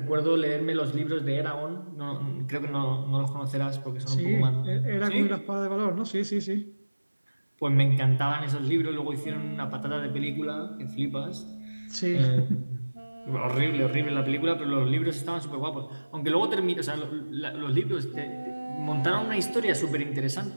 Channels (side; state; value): both; inverted; correlation -1.00